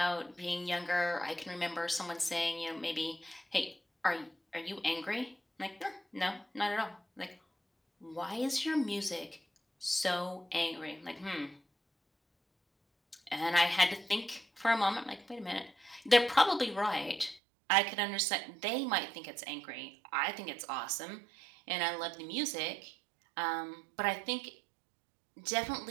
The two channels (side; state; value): left; drops out; at 17.4 s